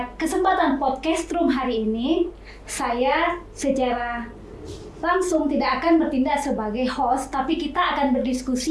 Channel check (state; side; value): identical; both; correlation 1.00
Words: kesempatan podcast room hari ini, saya secara langsung tidak akan bertindak sebagai host, tapi kita akan